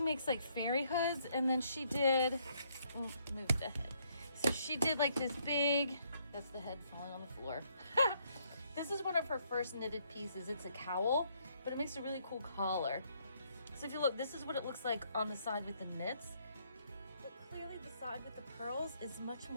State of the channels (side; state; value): both; inverted; correlation -0.71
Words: makes like fairy hoods, and then she did, oh, move the head. So she did like this big, that's the head falling on the floor. This is one of her first knitted pieces. It's a cowl, but it makes a really cool collar. So if you look, this is what it looks like on the side with the knits. But clearly the side with the pearls is much